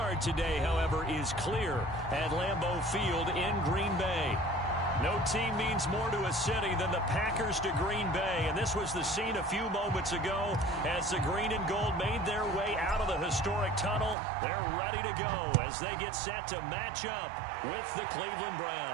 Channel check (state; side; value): drops out; left; at 14.2 s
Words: today, however, is clear at Lambeau Field in Green Bay. No team means more to a city than the Packers to Green Bay, and this was the scene a few moments ago as the green and gold made their way out of the historic tunnel. They're ready to go as they get set to match up with the Cleveland